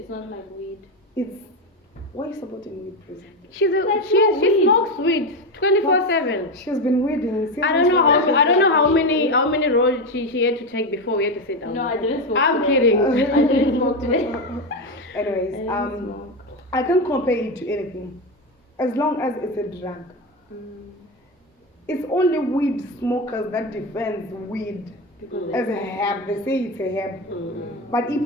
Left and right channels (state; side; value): normal; both; correlation 0.14